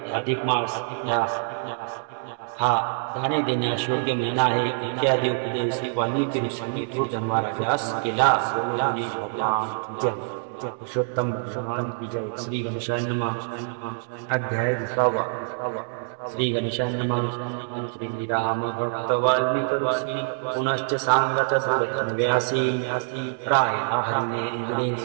अधिक मास हा दाने देण्यास योग्य महिना आहे इत्यादी उपदेश वाल्मिकी ऋषींनी थोर धर्मराजास केला. पुरुषोत्तम भगवान की जय. श्री गणेशाय नमः. अध्याय 20. श्री गणेशाय नमः. श्री राम भक्त वाल्मिक ऋषी पुनश्च सांगत व्यासी प्राय हरिणे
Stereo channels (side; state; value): left; silent; 61 dB below the other